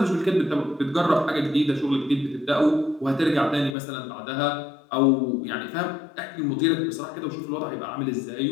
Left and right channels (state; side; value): drops out; right; at 3.8 s